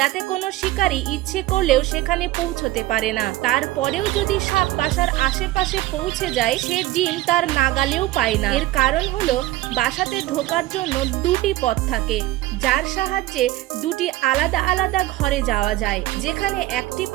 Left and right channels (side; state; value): left; quieter; 16.6 dB